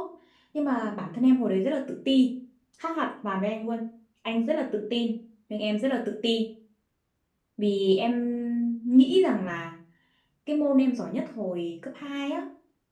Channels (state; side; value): identical; both; correlation 1.00